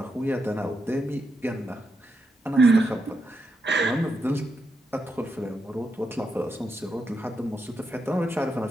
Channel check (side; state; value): both; normal; correlation 0.84